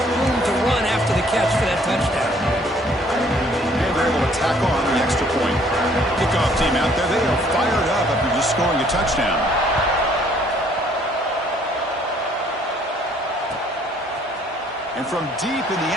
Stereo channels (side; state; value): both; normal; correlation 0.61